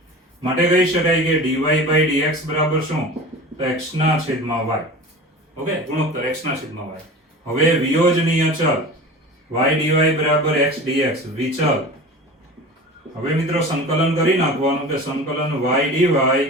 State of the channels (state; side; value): normal; both; correlation 0.35